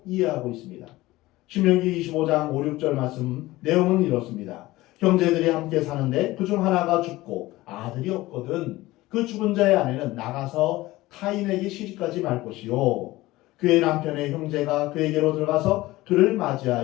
이해하고 있습니다. 신명기 25장 5, 6절 말씀 내용은 이렇습니다. 형제들이 함께 사는데 그중 하나가 죽고 아들이 없거든 그 죽은 자의 아내는 나가서 타인에게 시집가지 말 것이요 그의 남편의 형제가 그에게로 들어가서 그를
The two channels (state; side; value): quieter; right; 18.4 dB